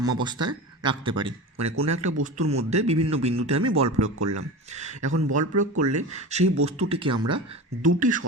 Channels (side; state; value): both; normal; correlation 0.29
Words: রাখতে পারি। মানে কোনো একটা বস্তুর মধ্যে বিভিন্ন বিন্দুতে আমি বল প্রয়োগ করলাম, এখন বল প্রয়োগ করলে সেই বস্তুটিকে আমরা দুটি